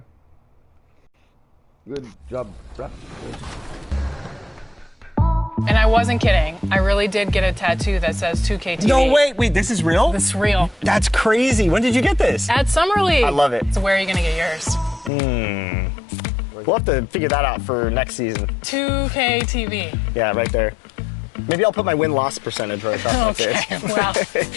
Good job, Raptors. And I wasn't kidding. I really did get a tattoo that says 2K TV. No, wait, this is real? This is real. That's crazy. When did you get this? At Summer League. I love it. So where are you going to get yours? We'll have to figure that out for next season. 2K TV. Yeah, right there. Maybe I'll put my win-loss percentage right across my face. Well,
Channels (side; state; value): right; drops out; at 15.1 s